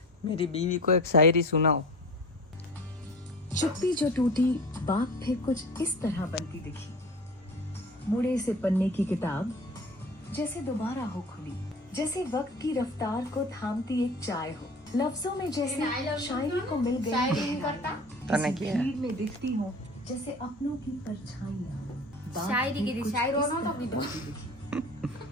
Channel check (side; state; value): both; normal; correlation 0.39